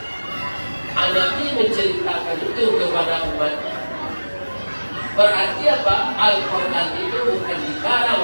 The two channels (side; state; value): both; inverted; correlation -1.00